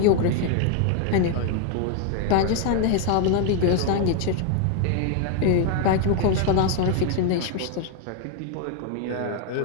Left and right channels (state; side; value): different; both; correlation 0.01